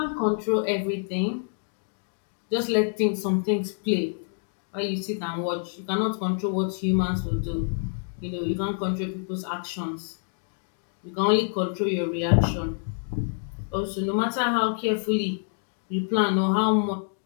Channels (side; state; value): right; silent; 60 dB below the other